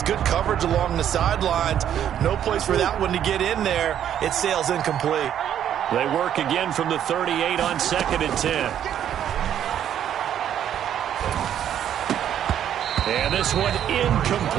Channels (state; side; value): quieter; left; 10.0 dB